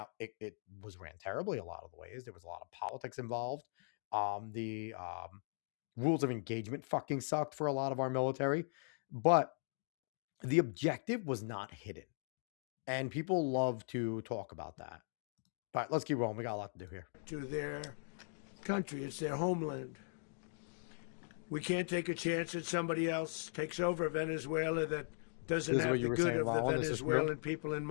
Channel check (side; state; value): right; silent; digital silence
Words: it was ran terribly a lot of the ways. There was a lot of politics involved. The rules of engagement fucking sucked for a lot of our military. But the objective was not hidden. And people love to talk about that. But let's keep rolling. We got a lot to do here. To their country. It's their homeland. We can't take a chance that somebody else takes over Venezuela that doesn't have the good of the Venezuelan people in